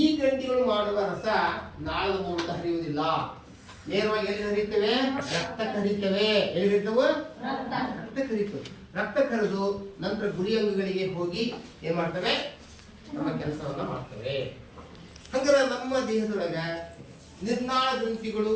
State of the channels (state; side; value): identical; both; correlation 1.00